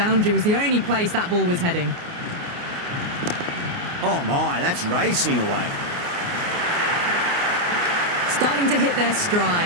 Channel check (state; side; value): late; left; 29 ms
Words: was the only place that ball was heading. Oh my, that's racing away. Starting to hit their